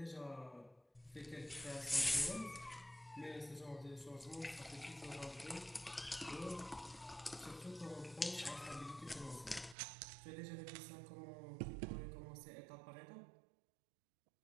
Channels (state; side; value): drops out; left; at 9.8 s